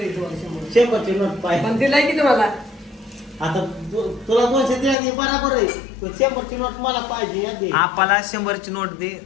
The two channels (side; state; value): right; drops out; at 5.0 s